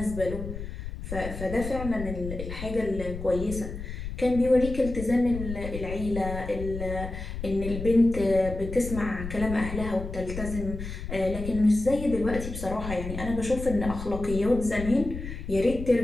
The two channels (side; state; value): left; noise; rumble, 8 dB below the sound